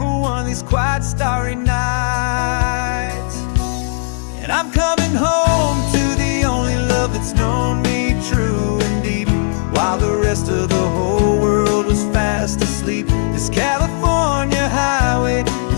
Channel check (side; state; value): right; silent; 55 dB below the other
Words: one of these quiet, starry nights. And I'm coming home to the only love that's known me true and deep, while the rest of the whole world was fast asleep. This California highway